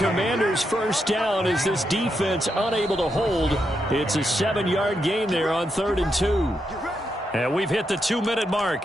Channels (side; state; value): both; normal; correlation 0.83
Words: 1st down as this defense unable to hold. It's a 7-yard gain there on 3rd and 2. And we've hit the 2-minute